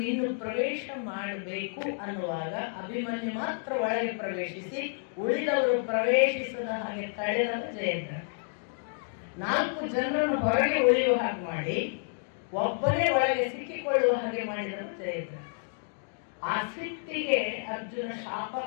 ಇನ್ನು ಪ್ರವೇಶ ಮಾಡಬೇಕು ಅನ್ನುವಾಗ ಅಭಿಮನ್ಯು ಮಾತ್ರ ಒಳಗೆ ಪ್ರವೇಶಿಸಿ ಉಳಿದವರು ಪ್ರವೇಶಿಸದ ಹಾಗೆ ತಡೆದ ಜಯದ್ರಥ. 4 ಜನರನ್ನು ಹೊರಗೆ ಉಳಿಯುವ ಹಾಗೆ ಮಾಡಿ ಒಬ್ಬನೇ ಒಳಗೆ ಸಿಕ್ಕಿಕೊಳ್ಳುವ ಹಾಗೆ ಮಾಡಿದರು ಜಯದ್ರಥ. ಆ ಸಿಟ್ಟಿಗೆ ಅರ್ಜುನ ಶಾಪ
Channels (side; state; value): right; silent; 58 dB below the other